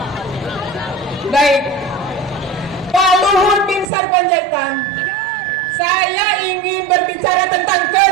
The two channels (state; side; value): drops out; left; at 3.9 s